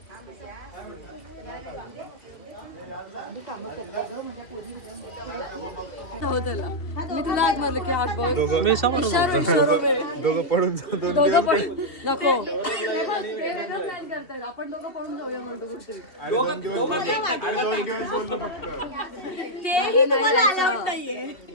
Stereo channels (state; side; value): late; right; 2.7 ms